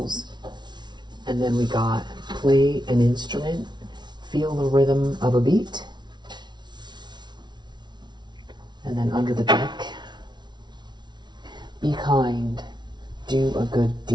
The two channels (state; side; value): late; left; 0.21 ms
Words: And then we got play an instrument, feel the rhythm of a beat. And then under the deck, be kind, do a good